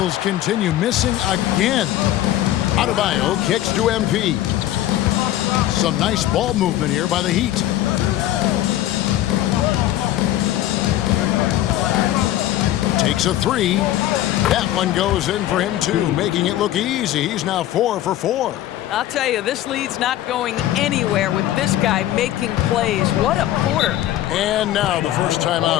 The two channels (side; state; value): right; quieter; 13.6 dB